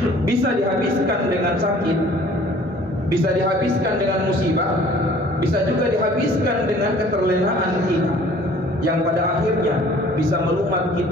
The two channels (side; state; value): both; normal; correlation 0.52